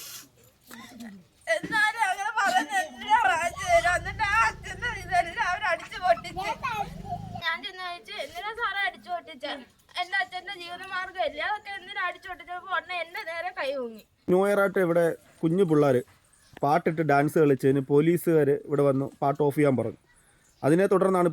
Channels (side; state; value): both; identical; correlation 1.00